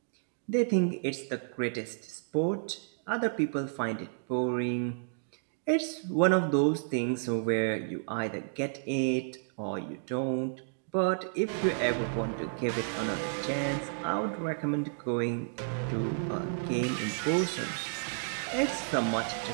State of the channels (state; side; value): silent; left; digital silence